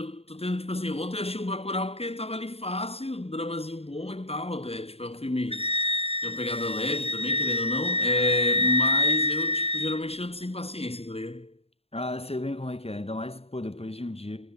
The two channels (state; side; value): late; right; 0.29 ms